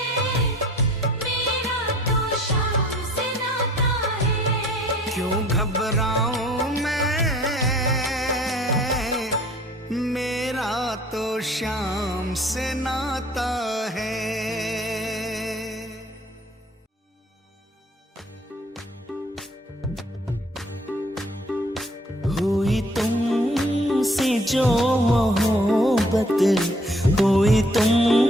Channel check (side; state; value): both; normal; correlation 0.57